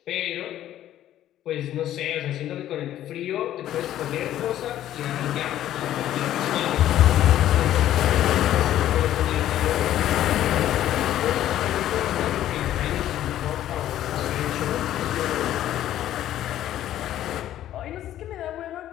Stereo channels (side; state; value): right; quieter; 12.4 dB